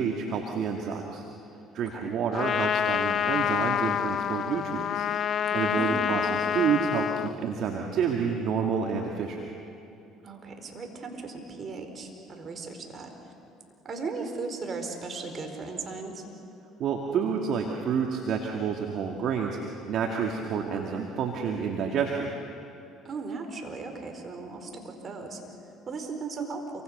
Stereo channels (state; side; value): normal; both; correlation 0.55